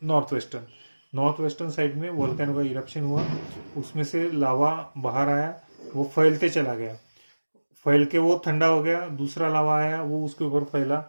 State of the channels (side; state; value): both; inverted; correlation -1.00